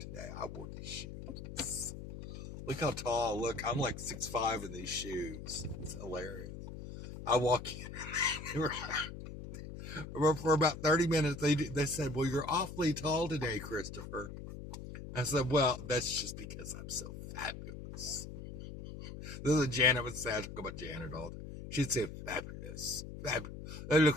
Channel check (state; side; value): noise; left; hum, 10 dB below the sound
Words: I wore these shoes. Look how tall. Look, I'm like 6'5" in these shoes. It's hilarious. I walk in for about 30 minutes. They said, "Well, you're awfully tall today, Christopher." I said, "Well, that's just because I'm so fabulous." This is what Janet would say. I talk about Janet all the time. She'd say, "Fabulous. That